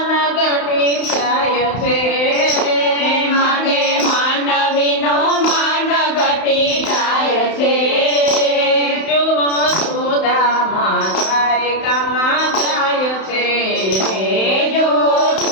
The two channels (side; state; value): right; late; 31 ms